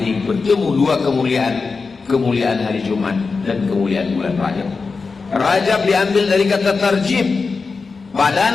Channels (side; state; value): right; quieter; 4.5 dB